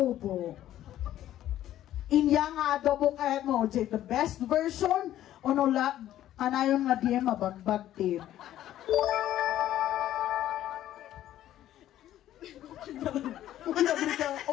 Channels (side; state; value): right; quieter; 12.7 dB